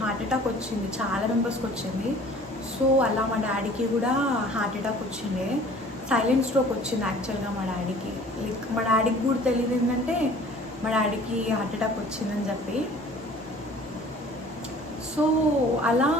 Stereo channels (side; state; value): both; normal; correlation 0.49